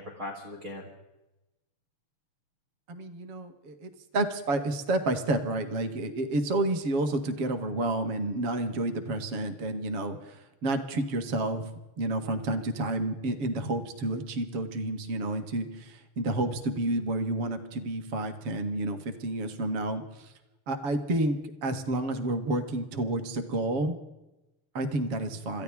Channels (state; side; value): late; left; 7.1 ms